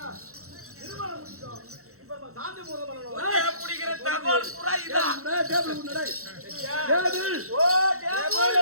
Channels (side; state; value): left; late; 0.64 ms